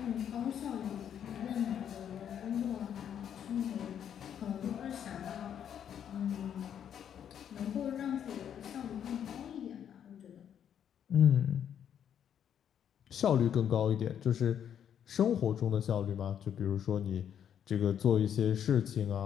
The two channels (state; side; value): quieter; right; 9.1 dB